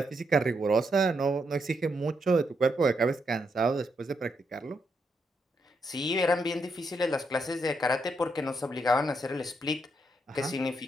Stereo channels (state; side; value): normal; both; correlation 0.79